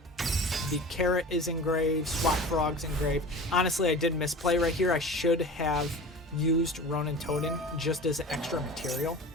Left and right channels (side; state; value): both; normal; correlation 0.36